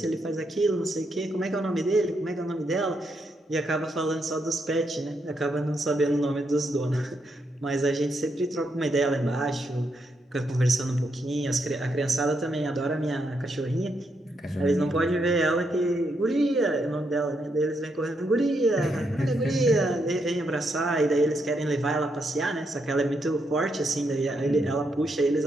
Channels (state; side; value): normal; both; correlation 0.79